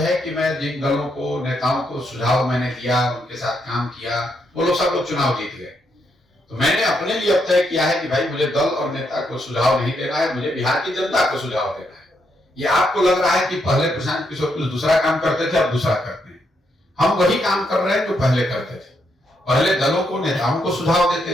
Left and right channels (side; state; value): both; normal; correlation 0.78